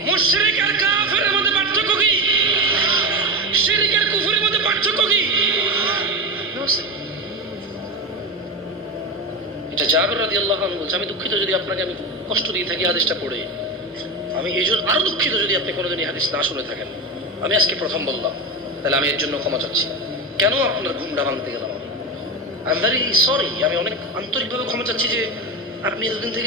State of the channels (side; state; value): both; normal; correlation 0.19